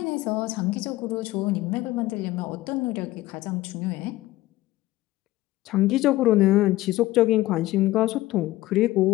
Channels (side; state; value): right; quieter; 17.2 dB